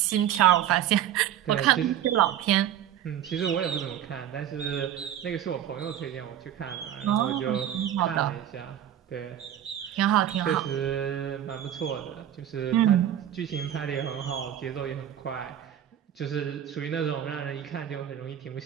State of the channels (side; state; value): left; quieter; 10.7 dB